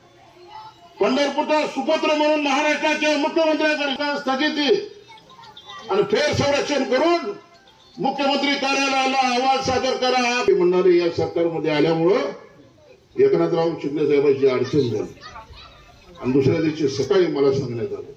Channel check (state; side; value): identical; both; correlation 1.00